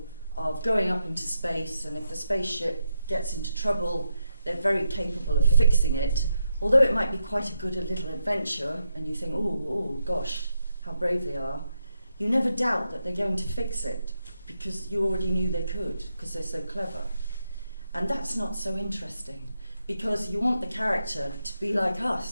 of going up into space, and if the spaceship gets into trouble, they're very capable of fixing it, although it might be quite a good little adventure, and you think, oh gosh, how brave they are, you never doubt that they're going to fix it, because you already knew they could, because they're so clever. And that's not so interesting, because you want the character to be like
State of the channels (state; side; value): inverted; both; correlation -0.83